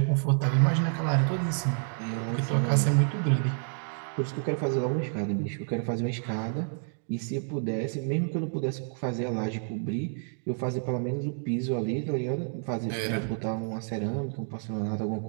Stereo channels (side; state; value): left; silent; 56 dB below the other